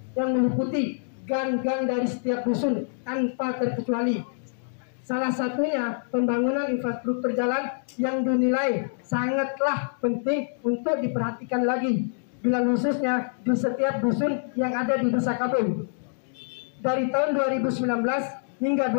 yang meliputi gang-gang dari setiap dusun tanpa terkecuali. Salah satunya pembangunan infrastruktur jalan yang dinilai sangatlah penting untuk diperhatikan lagi, bila khususnya di setiap dusun yang ada di Desa Kabul. Dari tahun 2019 hingga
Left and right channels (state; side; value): silent; right; digital silence